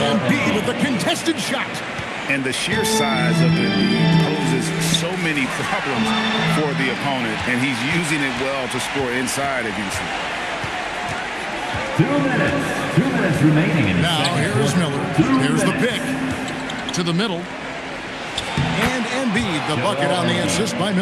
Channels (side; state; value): both; identical; correlation 1.00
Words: with a contested shot. And the sheer size of the lead poses so many problems for the opponent, and he's using it well to score inside, as you see. 2 minutes. 2 minutes remaining in the now second here's quarter. Miller. Here's the pick. To the middle. And Embiid, the bucket on the assist by